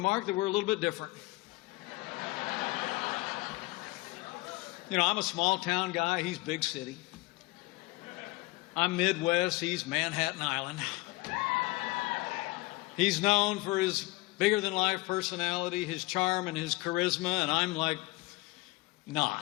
that we're a little bit different. You know, I'm a small-town guy. He's big city. I'm Midwest. He's Manhattan Island. He's known for his bigger-than-life personality, his charm, and his charisma, and I'm like,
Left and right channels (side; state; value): right; quieter; 22.3 dB